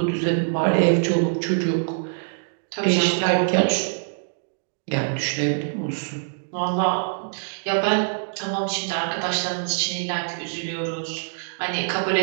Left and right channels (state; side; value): silent; left; digital silence